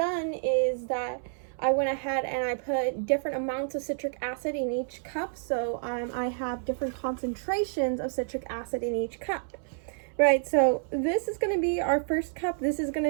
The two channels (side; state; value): left; silent; 59 dB below the other